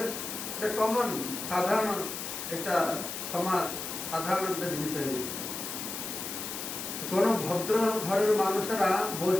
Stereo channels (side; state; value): left; noise; hiss, 6 dB below the sound